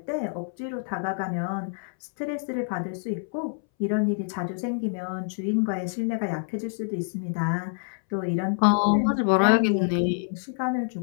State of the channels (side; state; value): right; silent; 60 dB below the other